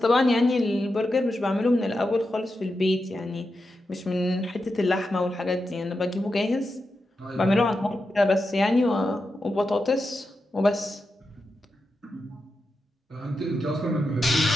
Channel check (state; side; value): normal; both; correlation 0.88